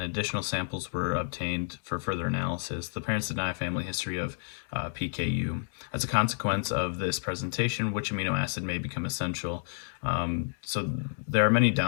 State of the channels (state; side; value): silent; right; digital silence